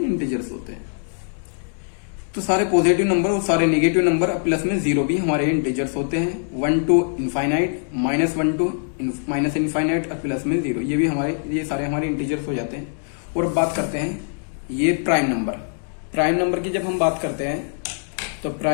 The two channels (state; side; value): silent; right; 64 dB below the other